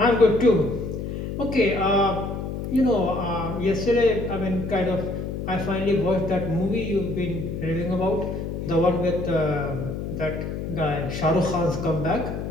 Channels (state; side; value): noise; left; hum, 5 dB below the sound